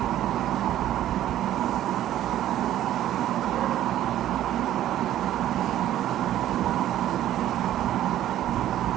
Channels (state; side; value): quieter; left; 12.6 dB